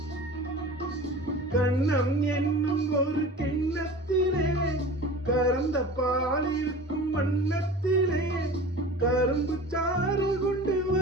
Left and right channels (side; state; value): both; normal; correlation 0.38